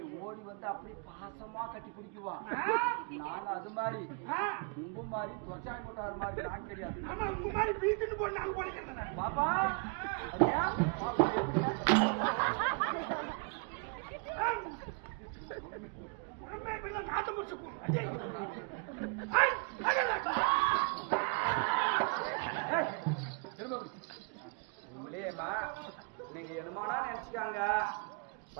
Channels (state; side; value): quieter; left; 35.7 dB